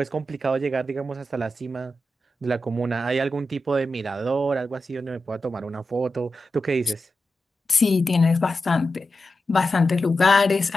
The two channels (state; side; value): normal; both; correlation 0.91